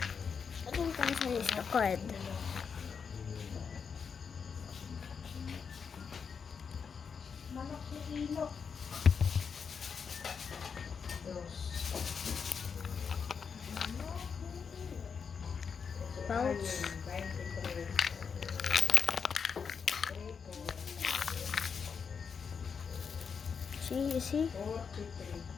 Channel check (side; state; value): right; quieter; 6.2 dB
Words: Atong kansa is the card. Manok na ilok. Pouch. See, you see?